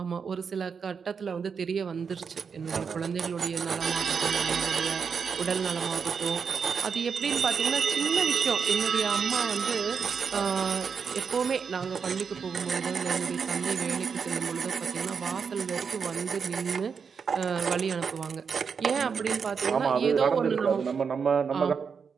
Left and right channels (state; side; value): quieter; left; 6.1 dB